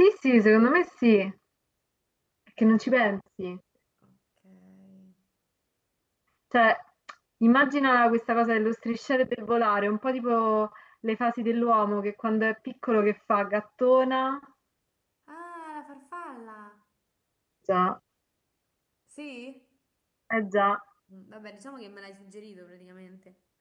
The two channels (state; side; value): identical; both; correlation 1.00